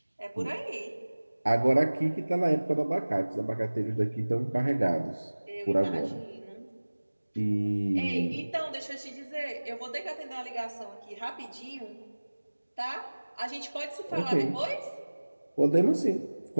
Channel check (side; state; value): both; inverted; correlation -1.00